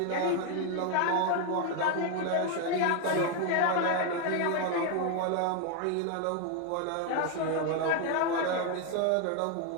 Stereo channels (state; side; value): different; both; correlation 0.01